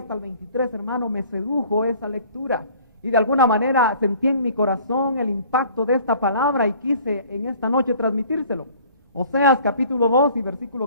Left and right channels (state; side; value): inverted; both; correlation -0.52